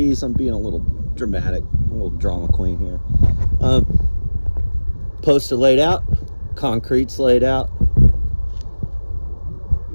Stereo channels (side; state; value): both; inverted; correlation -1.00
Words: I'm being a little dramatic, a little drama queen here. Posts are laid out, concrete's laid out,